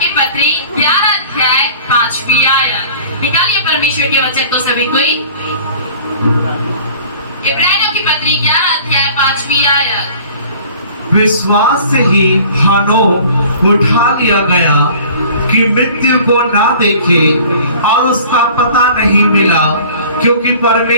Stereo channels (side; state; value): both; inverted; correlation -0.47